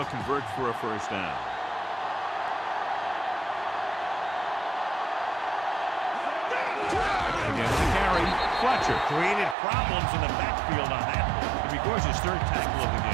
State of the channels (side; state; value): left; drops out; at 9.6 s